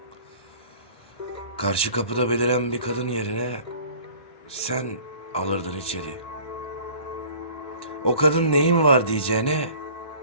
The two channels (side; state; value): right; late; 1.2 ms